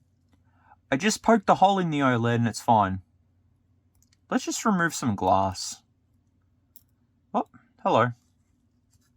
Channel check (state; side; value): identical; both; correlation 1.00